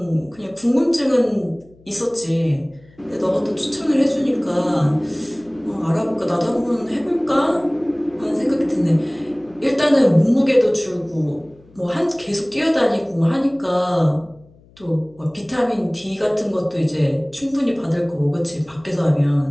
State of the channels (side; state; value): left; noise; hum, 28 dB below the sound